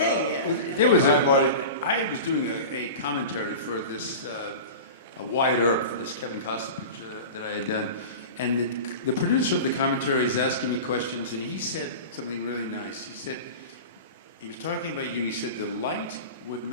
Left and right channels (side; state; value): both; inverted; correlation -0.32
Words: Yeah. There was Hi, Marty. I was doing a commentary for this a Wyatt Earp, this Kevin Costner picture that I had done, and the producer of the commentary is asking me questions, and he said something really nice. He said, he was talking about you. He said the light would